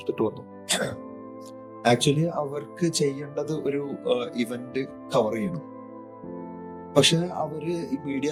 വന്നു. ആക്ച്വലി അവർക്ക് ചെയ്യേണ്ടത് ഒരു ഇവന്റ് കവർ ചെയ്യണം. പക്ഷെ അവര് ഈ മീഡിയ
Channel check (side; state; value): both; identical; correlation 1.00